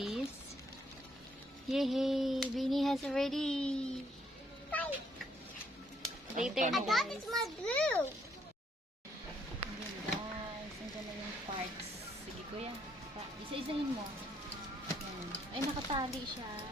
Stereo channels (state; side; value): normal; both; correlation 0.70